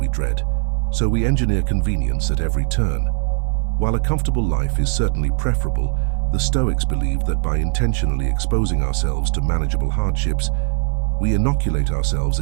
dread, so we engineer convenience at every turn. While a comfortable life is certainly preferable, the Stoics believed that by intentionally exposing ourselves to manageable hardships, we inoculate ourselves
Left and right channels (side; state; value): left; silent; digital silence